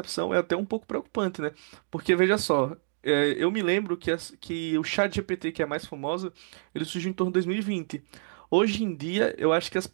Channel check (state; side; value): silent; left; digital silence